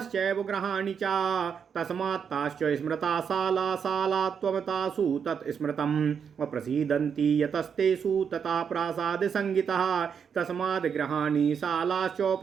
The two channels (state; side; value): quieter; left; 7.0 dB